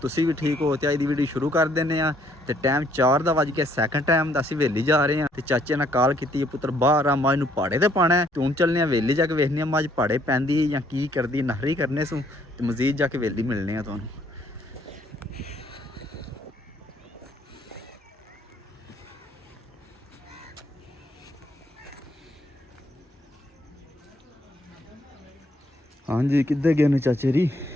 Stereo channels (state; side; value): normal; both; correlation 0.66